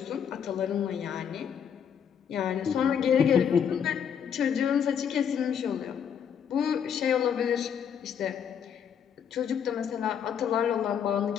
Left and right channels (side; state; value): right; quieter; 7.9 dB